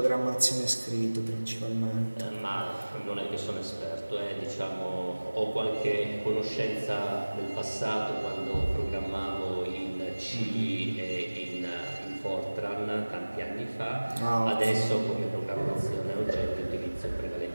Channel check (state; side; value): inverted; both; correlation -1.00